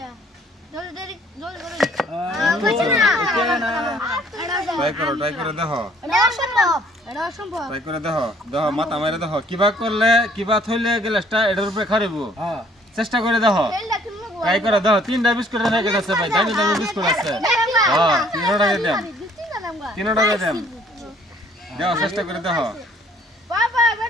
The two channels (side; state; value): both; normal; correlation 0.60